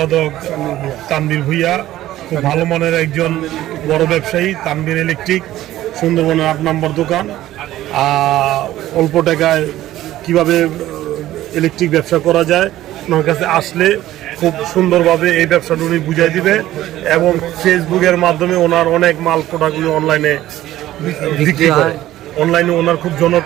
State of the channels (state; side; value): quieter; left; 14.4 dB